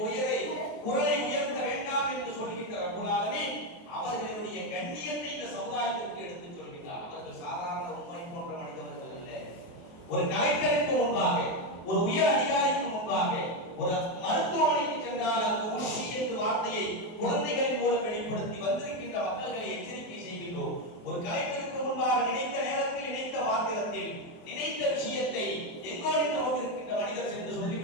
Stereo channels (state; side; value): late; right; 23 ms